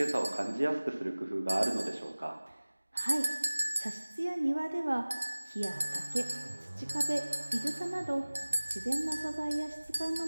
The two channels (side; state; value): both; inverted; correlation -1.00